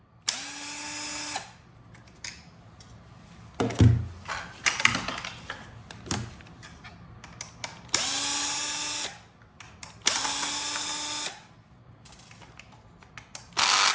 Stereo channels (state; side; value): identical; both; correlation 1.00